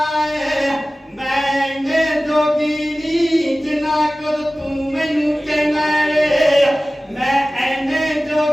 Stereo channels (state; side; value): normal; both; correlation 0.97